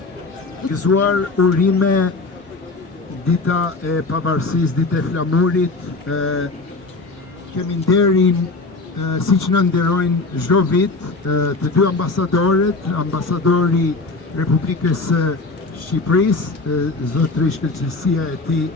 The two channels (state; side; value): quieter; right; 3.6 dB